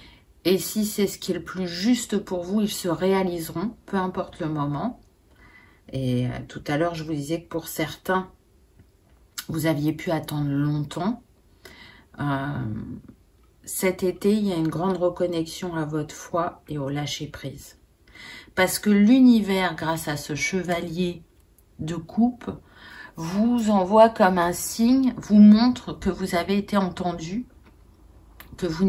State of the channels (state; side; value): identical; both; correlation 1.00